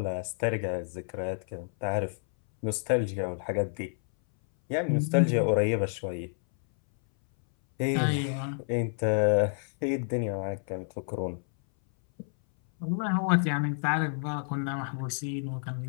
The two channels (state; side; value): silent; right; 58 dB below the other